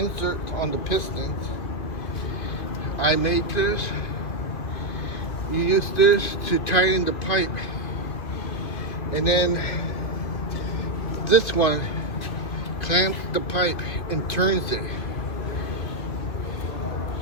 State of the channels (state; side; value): late; right; 2.3 ms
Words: on the pistons. I made this. You use this to tighten the pipe, and then this one clamps the pipe and turns it.